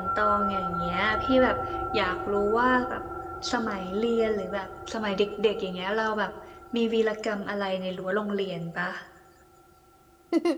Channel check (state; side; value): identical; both; correlation 1.00